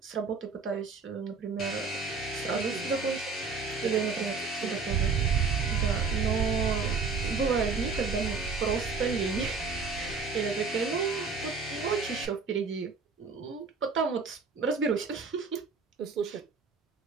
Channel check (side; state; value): left; quieter; 4.7 dB